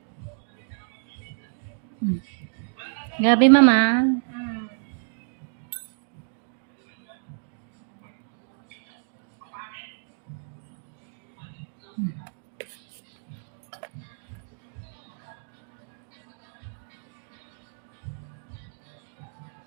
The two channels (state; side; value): silent; left; digital silence